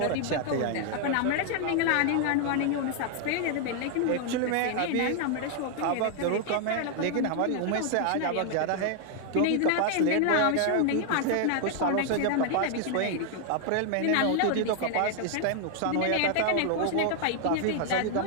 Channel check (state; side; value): different; both; correlation 0.00